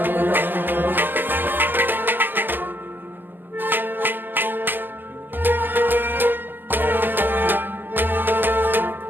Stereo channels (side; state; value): left; late; 0.095 ms